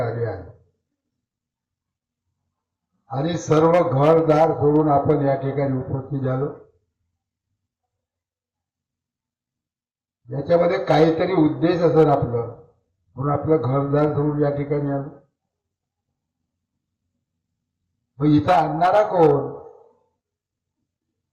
आहे आणि सर्व घरदार सोडून आपण या ठिकाणी उपस्थित झालो। याच्यामध्ये काहीतरी उद्देश असेल आपलं, म्हणून आपलं घरदार सोडून या ठिकाणी आलो। मग इथं आणणारा कोण?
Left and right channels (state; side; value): identical; both; correlation 1.00